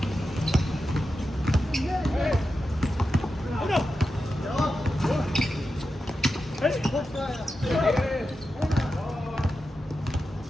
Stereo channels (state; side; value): normal; both; correlation 0.90